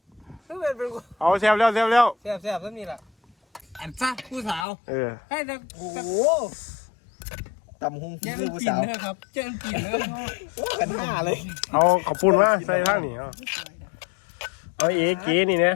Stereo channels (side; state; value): right; drops out; at 4.7 s